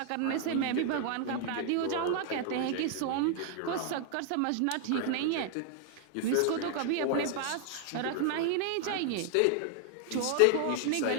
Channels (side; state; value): both; different; correlation 0.00